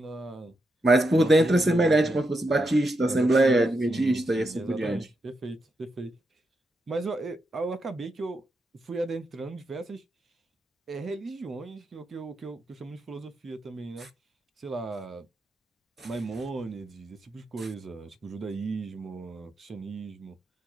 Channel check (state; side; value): normal; both; correlation 0.84